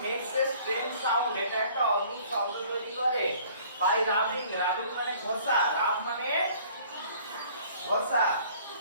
makes a strange sound, এটা একটা অদ্ভুত শব্দ তৈরি করে। বাই রাবিং, রাবিং মানে ঘষা, রাব মানে ঘষা,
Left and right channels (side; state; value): both; inverted; correlation -0.54